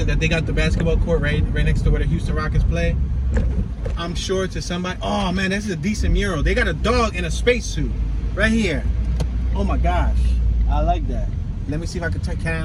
that they got the basketball court right next to where the Houston Rockets play. I'm sure to somebody, oh man, this is a decent mural. They got a dog in a spacesuit right here. Oh my gosh, I like that. Let me see if I can turn. Can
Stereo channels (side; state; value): both; identical; correlation 1.00